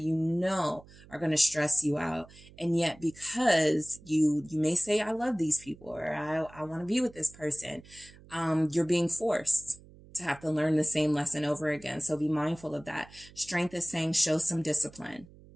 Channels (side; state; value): right; noise; hum, 22 dB below the sound